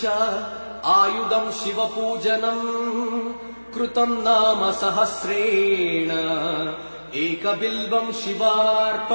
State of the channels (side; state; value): both; inverted; correlation -1.00